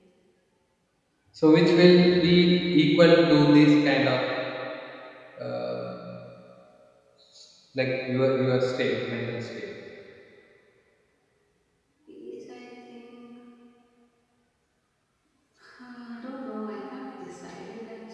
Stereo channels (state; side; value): identical; both; correlation 1.00